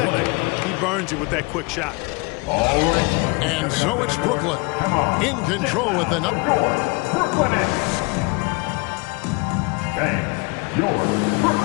he burns you with that quick shot. All right. And so it's Brooklyn in control with the number. Brooklyn Nets. Bang. Your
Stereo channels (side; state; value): right; quieter; 27.0 dB